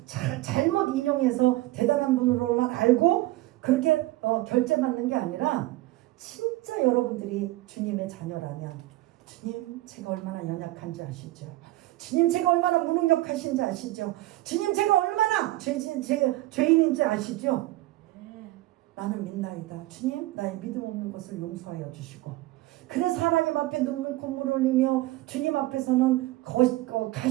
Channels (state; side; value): quieter; left; 17.9 dB